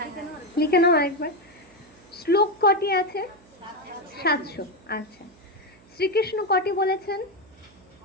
লিখে নাও আরেকবার। শ্লোক কটি আছে? 700। আচ্ছা, শ্রীকৃষ্ণ কটি বলেছেন?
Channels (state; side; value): noise; right; hum, 27 dB below the sound